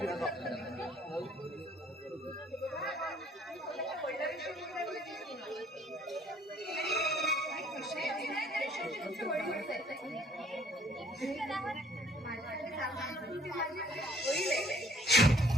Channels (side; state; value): both; normal; correlation 0.60